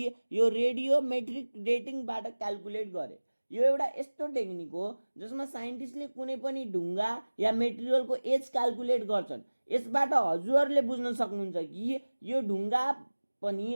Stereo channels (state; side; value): inverted; both; correlation -1.00